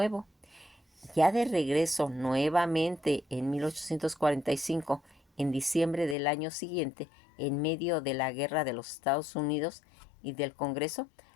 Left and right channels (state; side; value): drops out; right; at 6.2 s